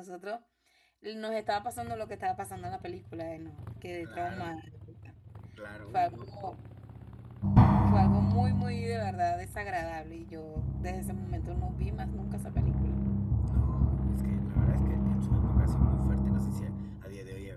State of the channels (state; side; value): identical; both; correlation 1.00